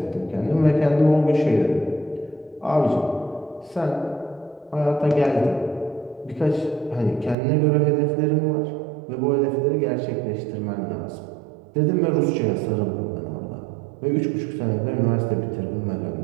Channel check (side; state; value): left; drops out; at 7.4 s